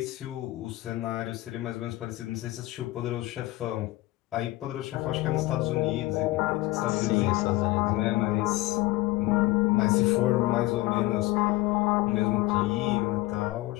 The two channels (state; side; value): quieter; right; 18.5 dB